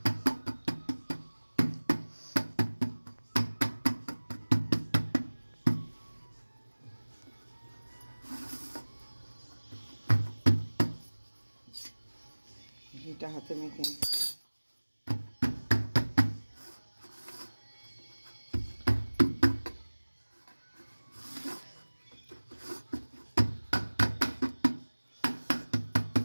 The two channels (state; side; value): inverted; both; correlation -1.00